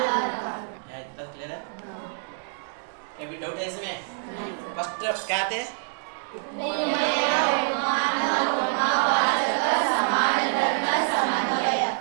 है, तब क्लियर है? कभी डाउट है इसमें? फर्स्ट क्या थे?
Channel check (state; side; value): silent; left; digital silence